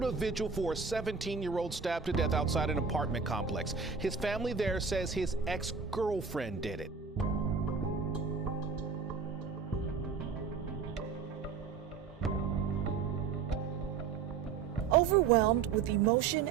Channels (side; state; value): left; quieter; 5.8 dB